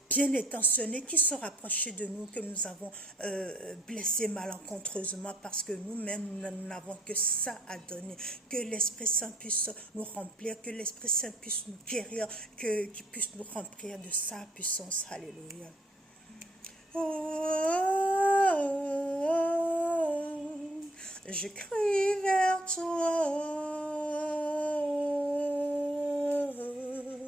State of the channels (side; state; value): both; normal; correlation 0.66